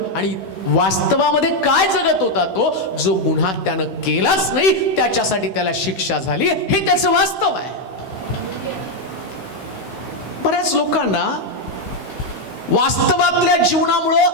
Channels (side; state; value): right; late; 16 ms